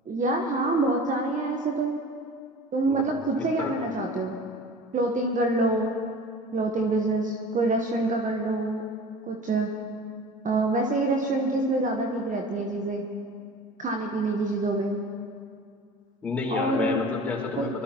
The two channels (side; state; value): both; normal; correlation 0.40